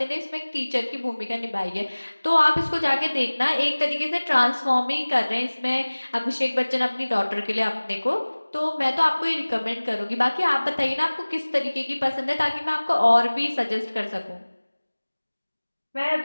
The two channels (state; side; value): inverted; both; correlation -1.00